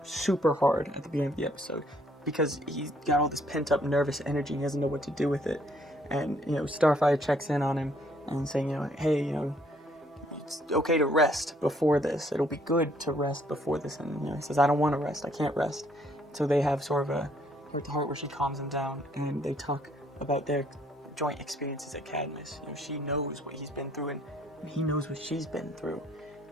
super hard at the beginning of the episode, because he's got all this pent up nervous energy and he doesn't know what to do with it. And, Starfire checks in on him and saying, hey, it's okay to rest before this. It'll be good to rest before this. And he says, I don't want to rest. I can't rest. So they have sort of a heart-to-heart where she calms him down, and they talk about their joint experiences at Cadmus. She knows what he's been through, and he knows what she's been through.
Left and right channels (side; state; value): both; normal; correlation 0.66